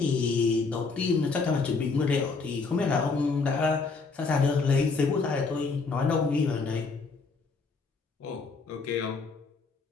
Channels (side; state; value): right; quieter; 4.4 dB